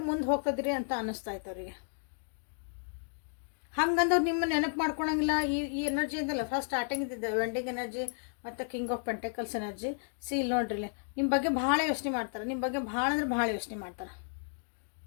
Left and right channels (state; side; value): silent; right; digital silence